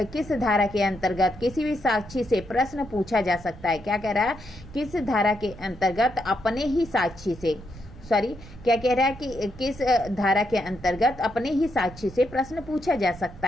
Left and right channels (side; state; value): right; noise; rumble, 17 dB below the sound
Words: किस धारा के अंतर्गत किसी भी साक्षी से प्रश्न पूछा जा सकता है? क्या कह रहा है? किस धारा के अंतर्गत अपने ही साक्षी से क्या कह रहा है कि किस धारा के अंतर्गत अपने ही साक्षी से प्रश्न पूछा जा सकता